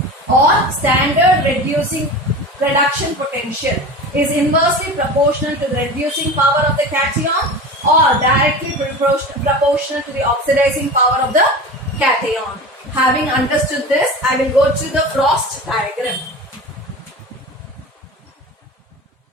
Or standard reduction potential is inversely proportional to the reducing power of the cation or directly proportional to the oxidizing power of the cation. Having understood this, I will go to the Frost diagram.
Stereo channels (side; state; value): both; normal; correlation 0.32